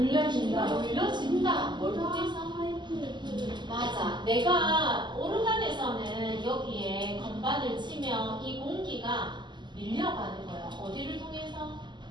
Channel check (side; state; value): left; late; 0.22 ms